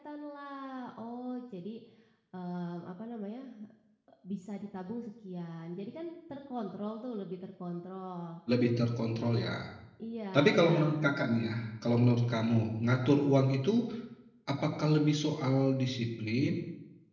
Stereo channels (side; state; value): both; identical; correlation 1.00